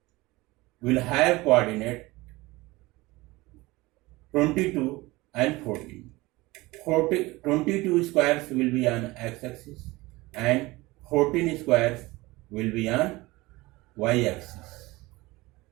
will have coordinate 22 and 14. 22 squares will be on x-axis and 14 squares will be on y-axis.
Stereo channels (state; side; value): quieter; left; 21.1 dB